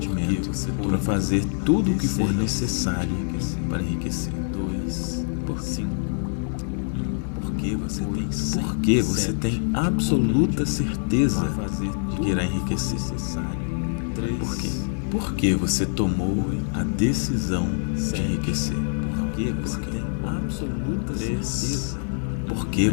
para fazer tudo o que for necessário para enriquecer. 2, por 5. Porque você tem absoluta certeza de que irá enriquecer. 3. Por quê? Porque você tomou a decisão de enriquecer. Porque você tem absoluta certeza. Porque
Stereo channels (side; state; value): right; silent; digital silence